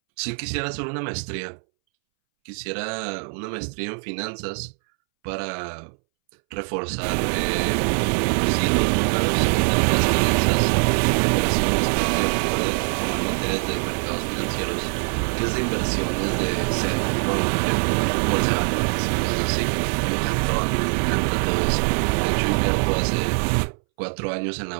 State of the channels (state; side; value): silent; left; 64 dB below the other